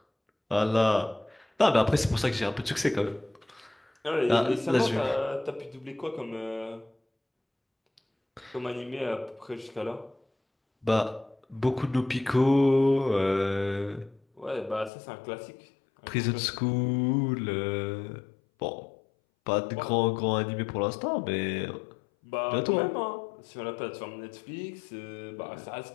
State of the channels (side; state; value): right; drops out; at 14.9 s